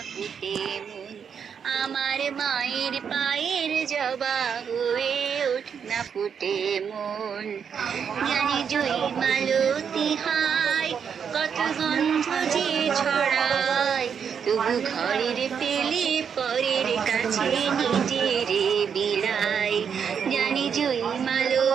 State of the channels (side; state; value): left; quieter; 7.2 dB